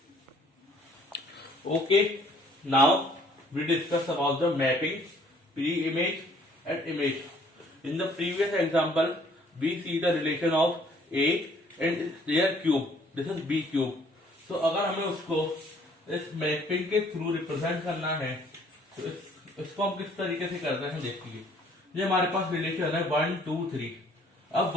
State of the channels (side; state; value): both; normal; correlation 0.60